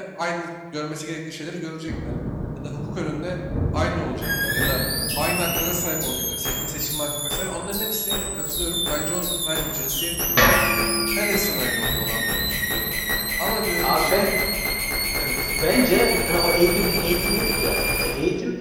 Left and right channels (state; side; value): identical; both; correlation 1.00